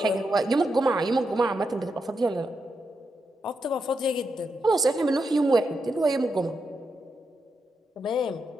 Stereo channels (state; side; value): normal; both; correlation 0.85